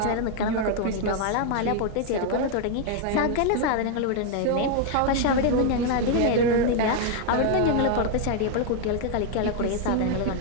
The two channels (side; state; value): both; different; correlation 0.00